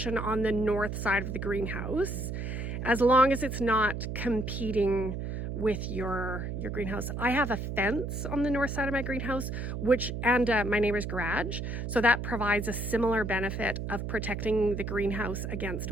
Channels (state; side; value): noise; right; hum, 4 dB below the sound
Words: on the north side of the greenhouse, as long as it's not competing with your greenhouse. I have a fence on the north side of my greenhouse, and my neighbor's garage. So that provides a similar benefit of protecting the greenhouse against